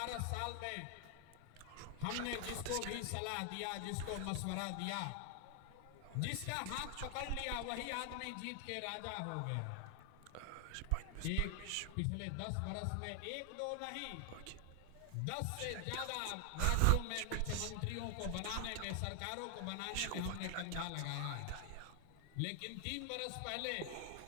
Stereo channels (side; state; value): both; different; correlation 0.00